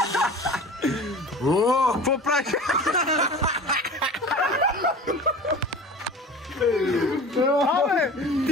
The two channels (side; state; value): both; normal; correlation 0.38